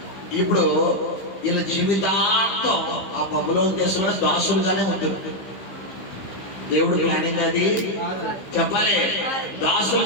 ఇప్పుడు వీళ్ళ జీవితాంతం ఆ బబులోను దేశంలో దాసులుగానే ఉంటుంది. దేవుడు ప్లానింగ్ అది చెప్పాలి.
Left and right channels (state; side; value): late; right; 15 ms